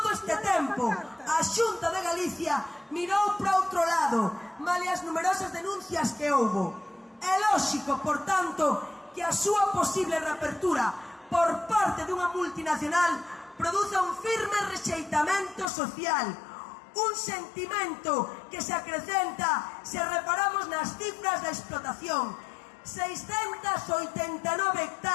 este tempo, a Xunta de Galicia mirou para outro lado, male as numerosas denuncias que houbo. É lóxico, por tanto, que a súa posible reapertura por parte dunha multinacional produza un firme rexeitamento social, un sentimento que se acrecenta se reparamos nas cifras da explotación, 689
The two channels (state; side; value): drops out; right; at 15.7 s